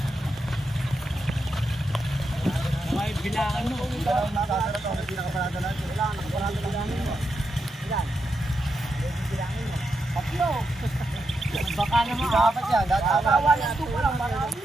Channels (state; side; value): normal; both; correlation 0.85